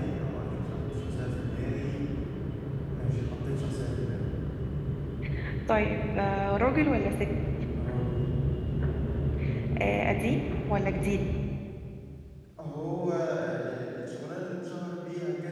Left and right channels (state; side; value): identical; both; correlation 1.00